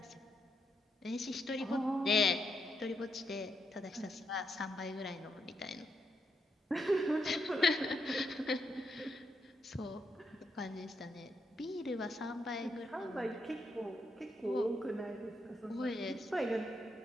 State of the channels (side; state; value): both; normal; correlation 0.80